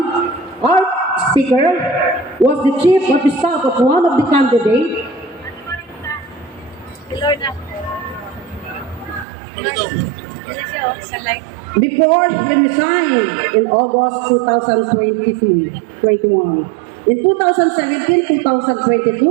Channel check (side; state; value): left; drops out; at 9.2 s